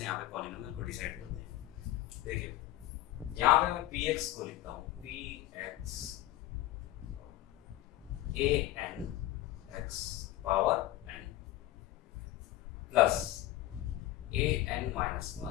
यहाँ पे पॉलिनोमियल को डिसाइड करते हैं। देखिए यहाँ पे मैं px को लिखता हूँ, px an x power n plus an minus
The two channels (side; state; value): right; quieter; 15.1 dB